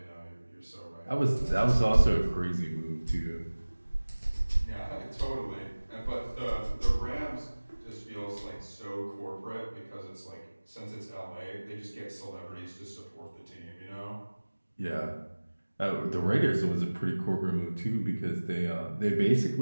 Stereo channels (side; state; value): both; inverted; correlation -1.00